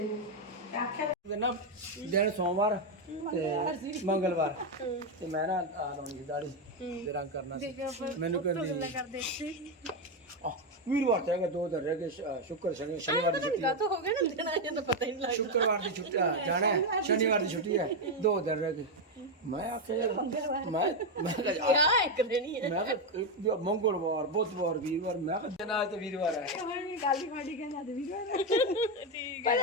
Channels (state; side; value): normal; both; correlation 0.06